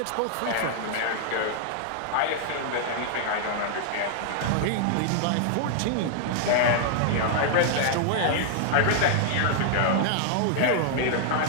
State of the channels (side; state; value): both; different; correlation -0.01